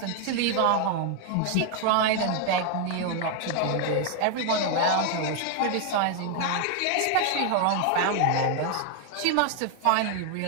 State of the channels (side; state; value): both; different; correlation 0.00